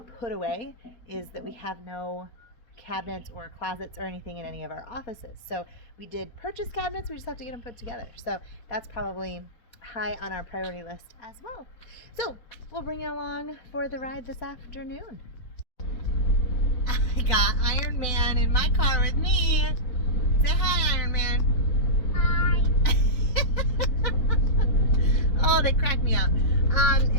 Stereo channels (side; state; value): right; late; 4.2 ms